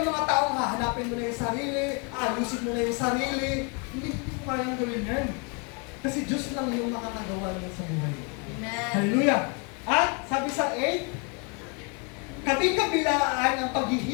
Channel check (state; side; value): quieter; right; 33.4 dB